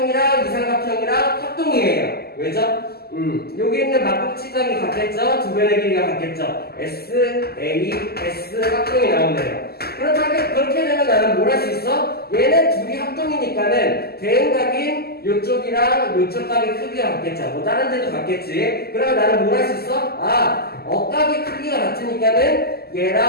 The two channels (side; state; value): right; late; 0.46 ms